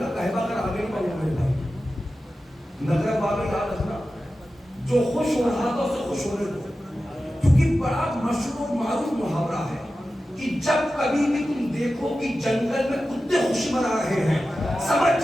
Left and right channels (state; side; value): normal; both; correlation 0.93